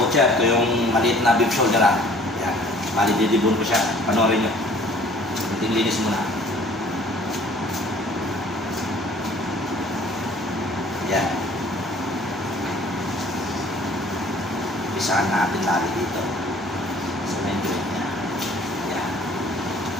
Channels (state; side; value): normal; both; correlation 0.53